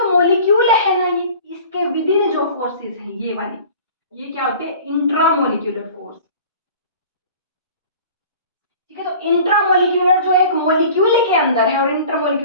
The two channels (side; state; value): both; inverted; correlation -0.44